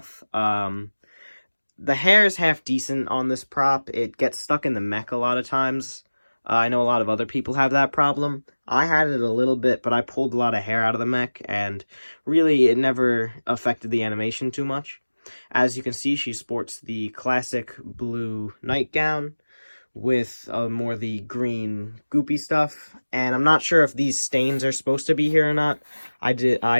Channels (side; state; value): both; inverted; correlation -1.00